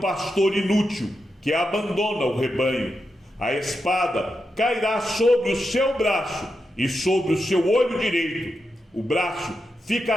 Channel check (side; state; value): both; normal; correlation 0.87